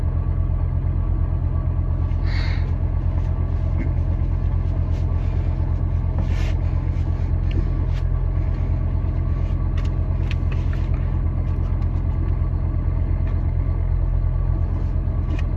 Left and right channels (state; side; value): identical; both; correlation 1.00